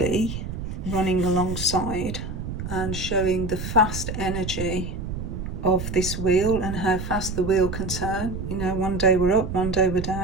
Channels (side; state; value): right; noise; rumble, 6 dB below the sound